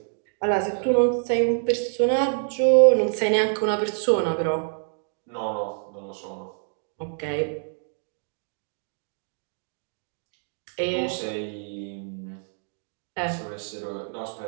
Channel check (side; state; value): left; silent; digital silence